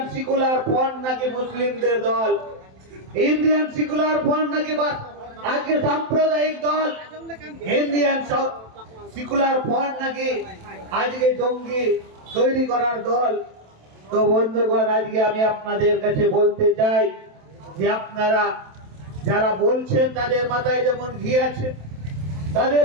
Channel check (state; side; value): late; left; 27 ms